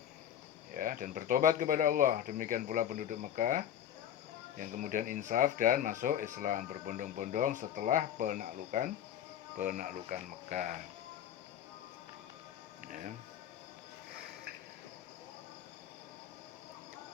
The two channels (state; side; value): quieter; right; 10.2 dB